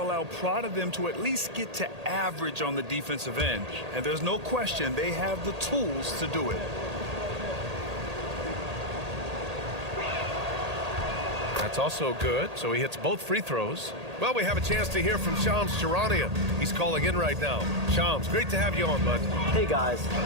prodded them to at least get to average on the defensive end. And there's no question they have the tools to do it. That's also good, so he hits both free throws. Well, we have a chance to hear from Shams Charania. He's calling in right now. Shams, great to have you on, bud. Hey, guys.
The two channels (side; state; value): left; late; 1.8 ms